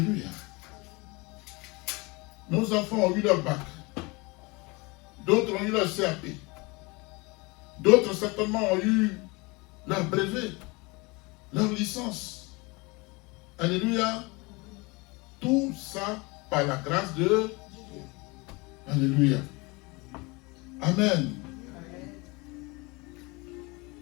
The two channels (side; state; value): right; quieter; 26.1 dB